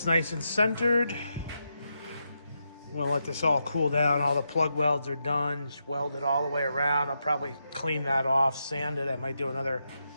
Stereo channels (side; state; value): both; inverted; correlation -0.85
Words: nice and centered. I'm gonna let this all cool down. All the plug welds are done. Just weld it all the way around. I'll probably clean that off, sand it. I might do another